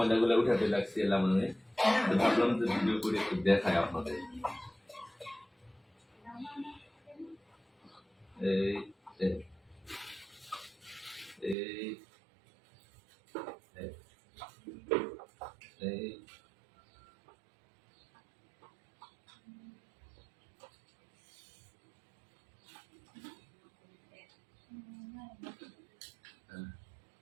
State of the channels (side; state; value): left; drops out; at 11.6 s